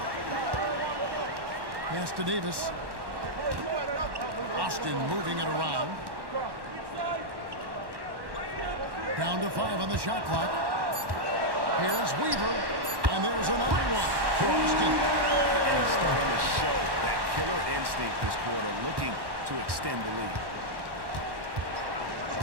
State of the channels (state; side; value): late; left; 1.1 ms